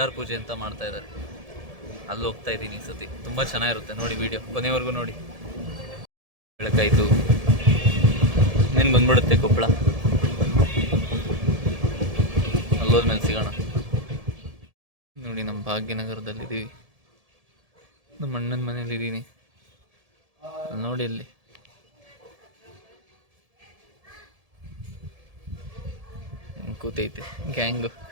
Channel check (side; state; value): left; late; 1.7 ms